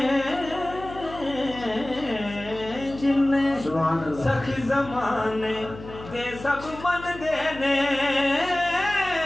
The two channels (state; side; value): noise; left; hum, 15 dB below the sound